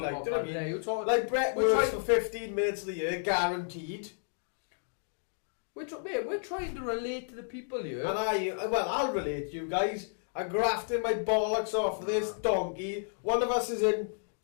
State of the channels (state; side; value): silent; right; digital silence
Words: do you know what I yeah, mean? you're talking- Like, Brett we're works trying- for 15 minutes of the year, guaranteed. We're trying to relate to the people here. And I'll relate to you guys. I'm grafting my bollocks off of this donkey. One of us is in